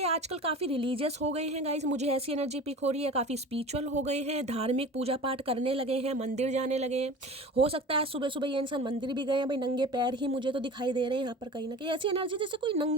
आजकल काफ़ी रिलीजियस हो गए हैं गाइस, मुझे ऐसी एनर्जी पिक हो रही है, काफ़ी स्पिरिचुअल हो गए हैं, धार्मिक पूजा पाठ करने लगे हैं, मंदिर जाने लगे हैं। हो सकता है सुबह सुबह ये इंसान मंदिर भी गए हैं। भाई नंगे पैर ही मुझे तो दिखाई दे रहे हैं यहाँ पर, कहीं ना कहीं ऐसी एनर्जी जैसे कोई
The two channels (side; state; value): both; normal; correlation 0.37